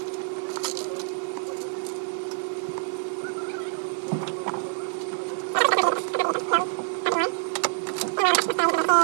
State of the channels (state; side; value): silent; left; 61 dB below the other